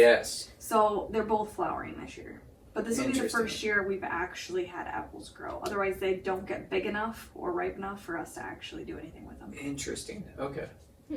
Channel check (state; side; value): identical; both; correlation 1.00